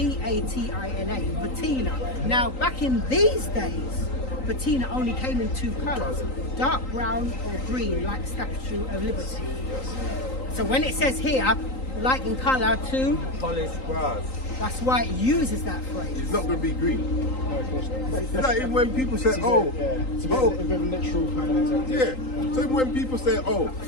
patina. Now, back in these days, patina only came in two colours, dark brown or green, like the Statue of Liberty. So when it says here, like in colour to, Polished brass. that's why it uses that phrase. It's not going to be green. No, of course not. It's like even when people say, It's it's a bit of a literal kind of interpretation. yeah. So even when people say, oh,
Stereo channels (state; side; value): late; right; 3.9 ms